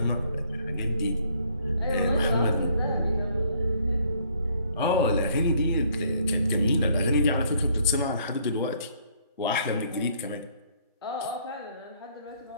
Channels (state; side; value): inverted; both; correlation -0.64